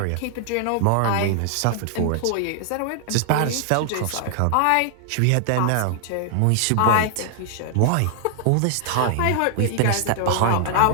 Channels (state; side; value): different; both; correlation 0.00